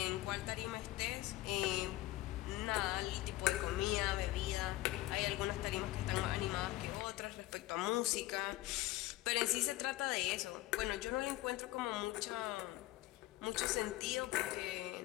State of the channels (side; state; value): right; quieter; 17.6 dB